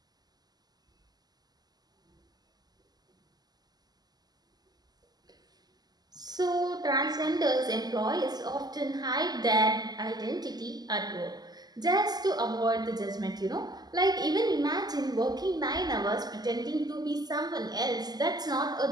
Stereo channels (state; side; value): late; left; 0.20 ms